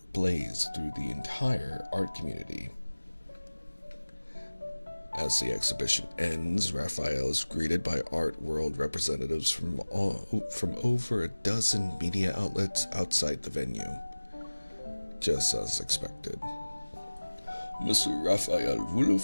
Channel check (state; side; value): inverted; both; correlation -1.00